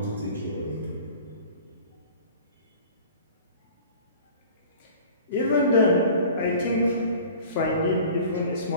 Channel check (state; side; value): inverted; both; correlation -0.44